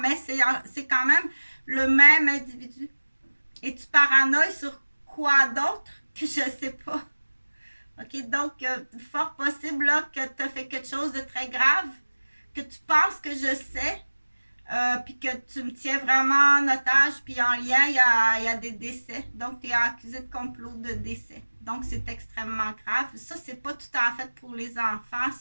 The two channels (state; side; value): inverted; both; correlation -1.00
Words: c'est quand même le même individu. Et tu paranoïes sur quoi d'autre que je sais pas. OK, donc, fort possible là, que tu as fait quelque chose de très grave, que tu penses que je sais, puis que tu me tiens vraiment en otage, puis en lien, il y a des décès. Donc, tu es accusé de complot de décès. Donc, c'est extrêmement grave. Ça, c'est pas tout à fait pour les enfants,